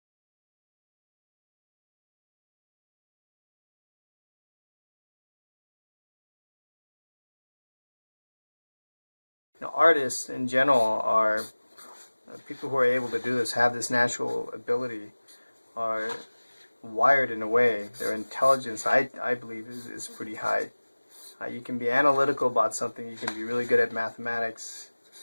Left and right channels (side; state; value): both; inverted; correlation -1.00